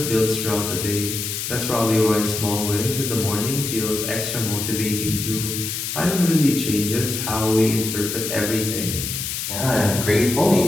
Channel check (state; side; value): noise; left; hiss, 4 dB below the sound